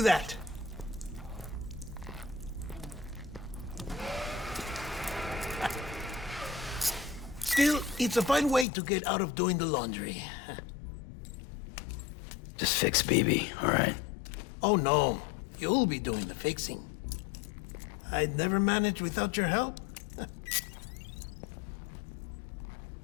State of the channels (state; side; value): drops out; right; at 8.7 s